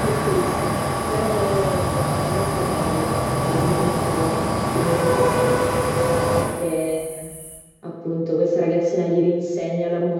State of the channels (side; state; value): both; identical; correlation 1.00